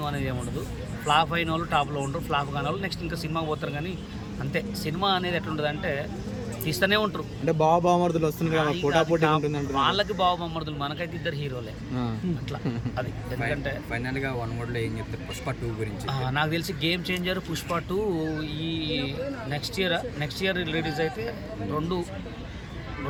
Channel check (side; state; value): both; identical; correlation 1.00